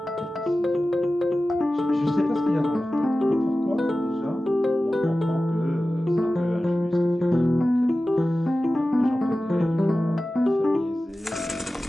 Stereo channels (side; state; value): both; normal; correlation 0.95